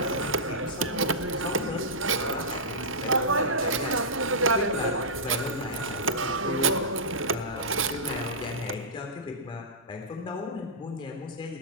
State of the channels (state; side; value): normal; both; correlation -0.15